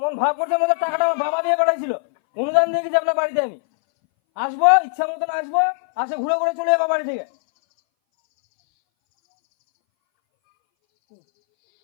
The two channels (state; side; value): silent; right; 62 dB below the other